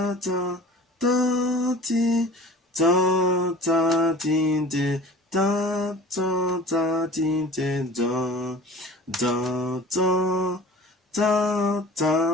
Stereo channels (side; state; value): both; normal; correlation 0.43